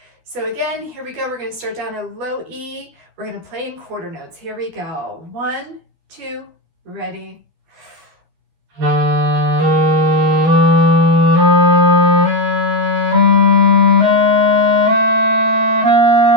So again, here we go. We're going to start down a low E. We're going to play in quarter notes. Here we go. 1, 2, ready.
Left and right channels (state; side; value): late; left; 12 ms